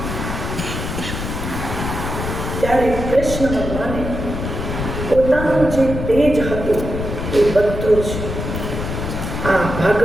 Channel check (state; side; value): noise; left; rumble, 5 dB below the sound